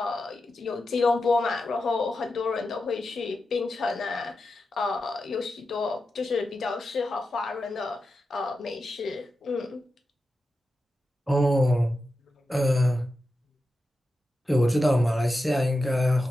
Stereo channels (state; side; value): normal; both; correlation 0.90